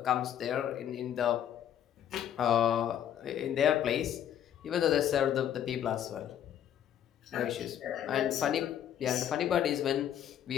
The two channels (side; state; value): right; quieter; 10.2 dB